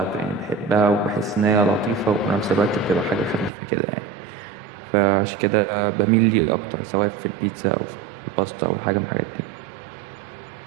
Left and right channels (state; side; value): drops out; left; at 3.5 s